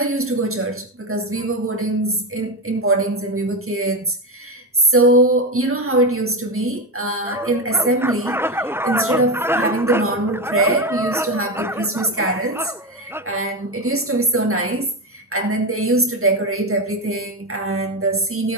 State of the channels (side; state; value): both; normal; correlation 0.15